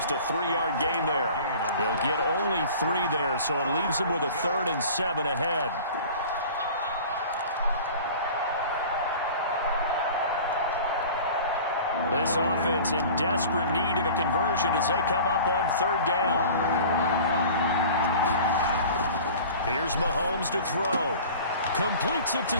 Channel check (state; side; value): inverted; both; correlation -0.42